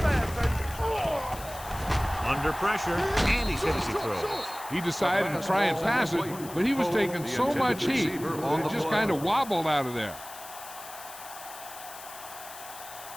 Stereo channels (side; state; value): left; noise; hiss, 14 dB below the sound